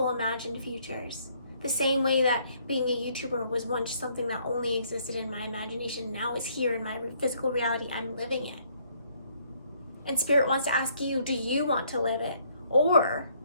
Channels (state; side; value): inverted; both; correlation -0.66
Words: imagined futures? The same way that being a YouTuber was once something that only existed in my imagination, now is here in my physical reality. I'm living it. And Spirit wants to ask you, do you want to live it? Or